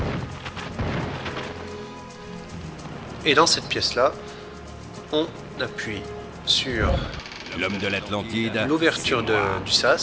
Et dans cette pièce-là, on appuie sur L'homme de l'Atlantide. l'ouverture du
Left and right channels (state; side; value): identical; both; correlation 1.00